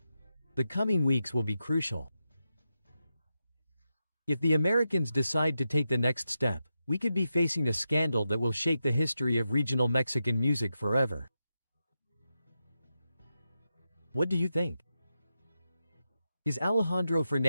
The coming weeks will be crucial. If the Americans decide to take the next step, we could be facing a scandal that will shake the history of regional Mexican music forever. What do you think? Is Alejandro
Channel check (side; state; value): both; inverted; correlation -0.88